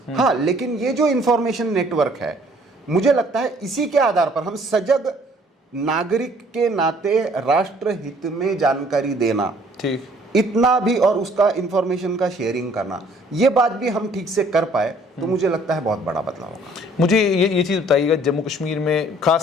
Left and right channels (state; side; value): normal; both; correlation 0.59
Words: हाँ, लेकिन ये जो इंफॉर्मेशन नेटवर्क है, मुझे लगता है इसी के आधार पर हम सजग नागरिक के नाते राष्ट्र हित में जानकारी देना, ठीक, इतना भी, और उसका इंफॉर्मेशन का शेयरिंग करना, ये बात भी हम ठीक से कर पाए तो मुझे लगता है बहुत बड़ा बदलाव होगा। मुझे ये चीज़ बताइएगा, जम्मू कश्मीर में